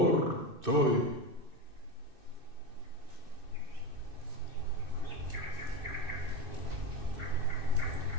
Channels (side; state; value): left; late; 2.6 ms